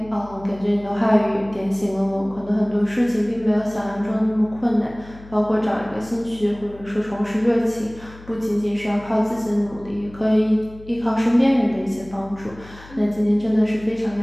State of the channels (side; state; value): left; noise; hum, 19 dB below the sound